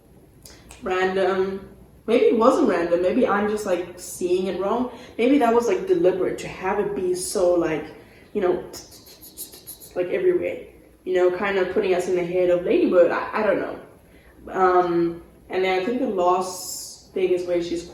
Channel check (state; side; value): identical; both; correlation 1.00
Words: random. Maybe it wasn't random. Maybe I'm just like seeing it wrong. Maybe that was like deliberate to have it be so like, you know, like everywhere. You know, kind of putting us in the head of Ladybird. I don't know. And then I think the last thing is where she's